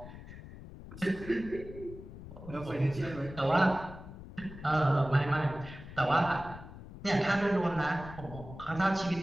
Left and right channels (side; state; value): left; noise; rumble, 14 dB below the sound